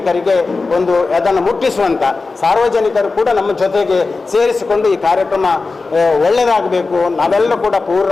ಒಂದು ಅದನ್ನು ಮುಟ್ಟಿಸುವಂಥ ಸಾರ್ವಜನಿಕರು ಕೂಡ ನಮ್ಮ ಜೊತೆಗೆ ಸೇರಿಸಿಕೊಂಡು ಈ ಕಾರ್ಯಕ್ರಮ ಒಳ್ಳೆಯದಾಗಬೇಕು, ನಾವೆಲ್ಲರೂ ಕೂಡ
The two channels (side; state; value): right; quieter; 3.9 dB